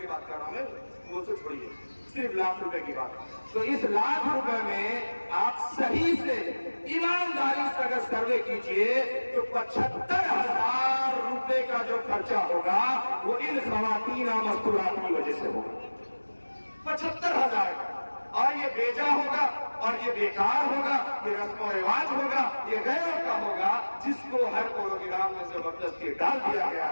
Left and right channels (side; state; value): both; inverted; correlation -1.00